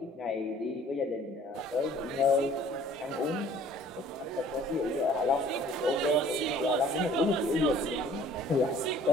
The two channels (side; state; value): both; normal; correlation 0.53